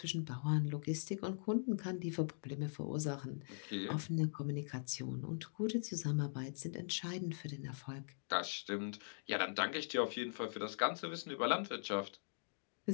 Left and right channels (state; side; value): silent; right; digital silence